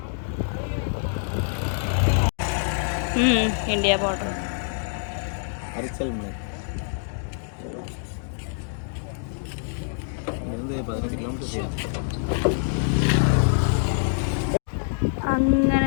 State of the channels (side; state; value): right; silent; digital silence